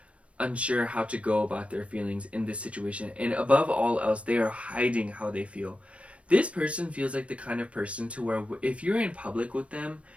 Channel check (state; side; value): late; left; 0.062 ms